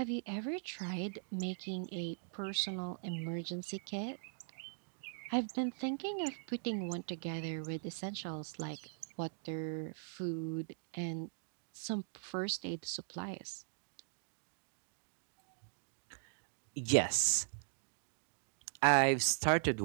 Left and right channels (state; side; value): silent; left; digital silence